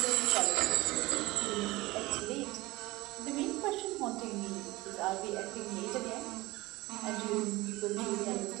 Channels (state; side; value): quieter; left; 20.4 dB